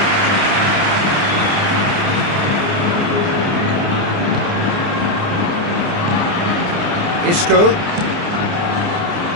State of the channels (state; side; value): late; left; 29 ms